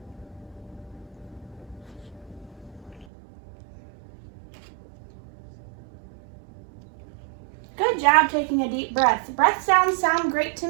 Good job taking a deep breath. Breath sounds sound great to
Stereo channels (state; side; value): drops out; left; at 3.1 s